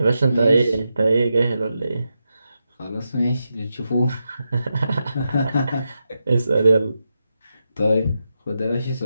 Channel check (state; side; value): inverted; both; correlation -0.87